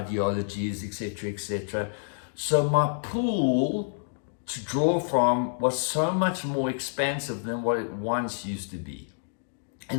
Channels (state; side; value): silent; right; digital silence